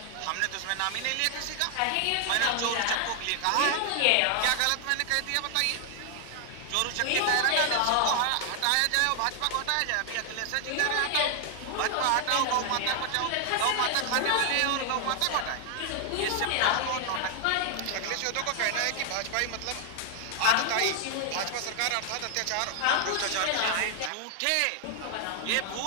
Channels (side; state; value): both; different; correlation 0.00